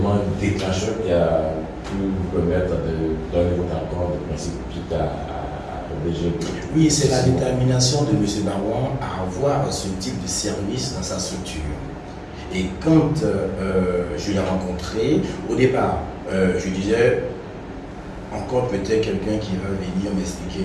déclencheur qui a pu vous permettre de donner votre accord de principe suite au DG. Oui, c'est la détermination de M. Barwan à avoir ce type de service dans sa structure. Et quand je l'ai rencontré, au départ, je disais, encore peut-être quelqu'un qui va venir m'expliquer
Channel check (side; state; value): both; identical; correlation 1.00